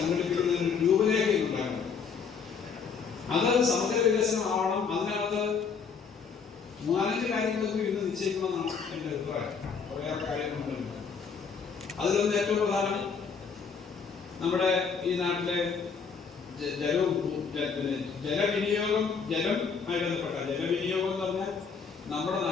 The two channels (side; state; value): right; quieter; 5.8 dB